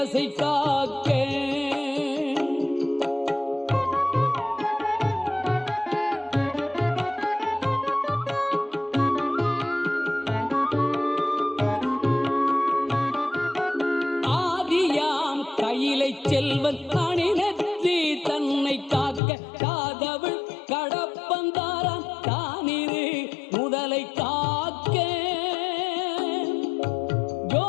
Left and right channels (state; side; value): drops out; right; at 19.2 s